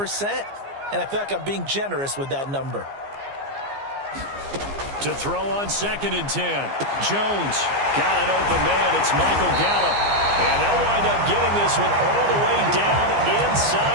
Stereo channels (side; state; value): left; late; 15 ms